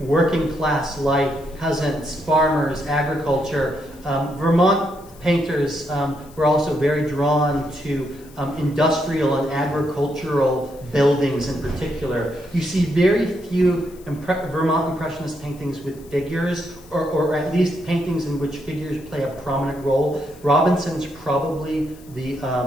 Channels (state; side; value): noise; left; hiss, 25 dB below the sound